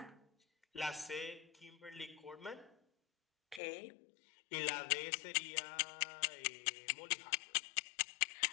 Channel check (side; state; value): right; drops out; at 3.6 s